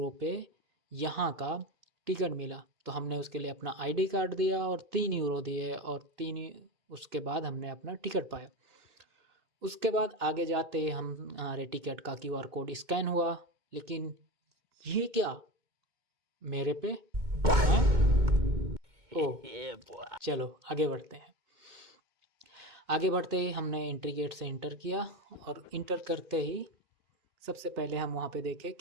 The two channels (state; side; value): late; left; 2.2 ms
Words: पे यहाँ का टिकट मिला। तो हमने उसके लिए अपना आईडी कार्ड दिया और 3 यूरो दिए और उसके बाद हमने अपना टिकट पाया। उसके बाद आगे जाते ही हमारे टिकट का क्यूआर कोड स्कैन हुआ। लेकिन ये क्या, मेरे पे हैं? ओह, Yeah, boy. चलो आगे बढ़ते हैं। आगे बढ़ते ही हमने एंट्री गेट से इंटर किया और इंटर करते ही सबसे पहले हम वहाँ पे देखे